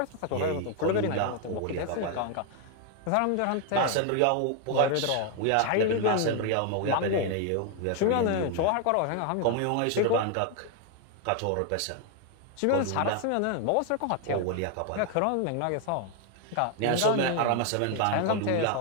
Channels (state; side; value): different; both; correlation 0.01